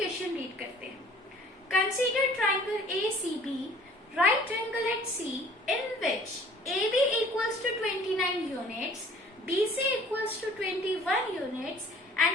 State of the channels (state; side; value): normal; both; correlation 0.52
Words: रीड करते हैं। Consider triangle ACB, right angle at C in which AB equals to 29 units, BC equals to 21 units and